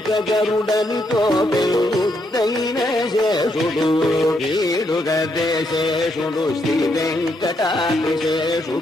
గరుడనితో పెన్నుద్దైన శేషుడు వీడుగదేశేషుడు శ్రీ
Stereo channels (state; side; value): normal; both; correlation 0.77